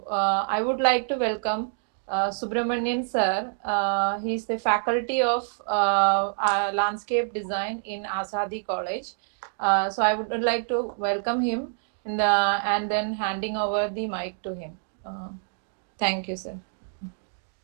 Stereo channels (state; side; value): silent; left; digital silence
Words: I would like to welcome Subramanian sir. He is the faculty of landscape design in ASADI College. So I would like to welcome him and then handing over the mic to him. Thank you, sir.